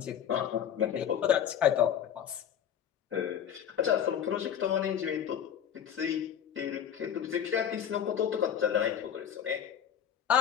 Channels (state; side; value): quieter; right; 9.1 dB